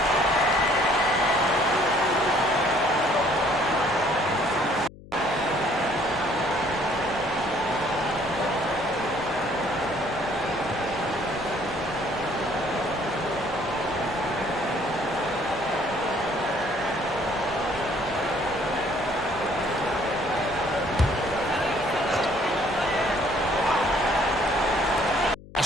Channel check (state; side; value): noise; left; hum, 19 dB below the sound